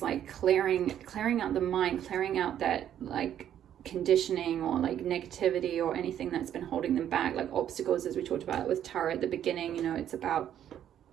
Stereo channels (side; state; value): left; quieter; 10.4 dB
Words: like clearing out the mind, clearing out that like conditioning or like negativity or anything that's been holding them back, like obstacles, as we talked about with tarot at the beginning. You know, it's about